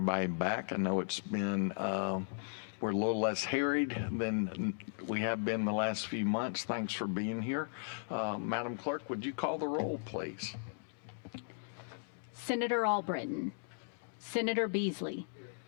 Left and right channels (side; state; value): right; silent; digital silence